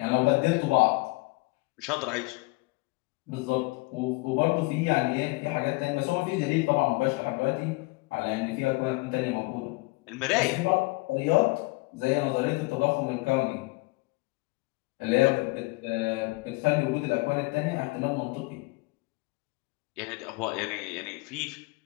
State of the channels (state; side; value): quieter; right; 25.5 dB